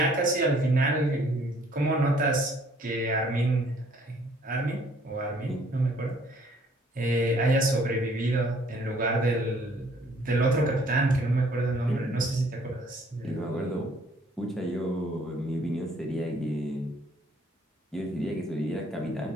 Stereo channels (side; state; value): both; normal; correlation 0.60